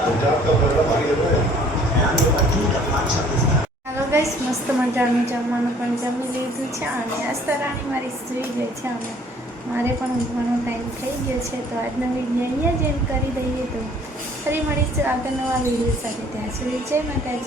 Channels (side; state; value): both; normal; correlation 0.56